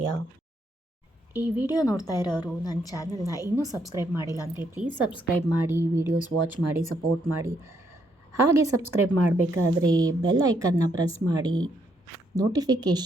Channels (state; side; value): normal; both; correlation 0.74